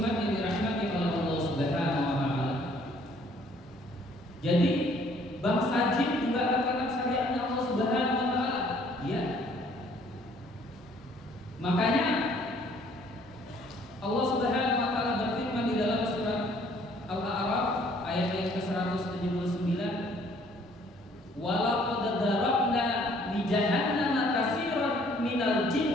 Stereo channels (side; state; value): both; normal; correlation 0.60